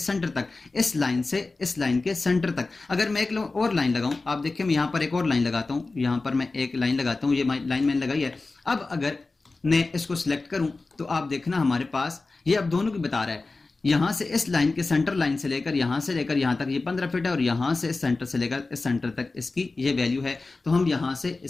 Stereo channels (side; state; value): right; quieter; 3.6 dB